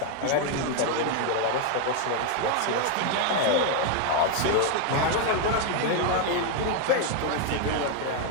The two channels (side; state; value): both; different; correlation 0.01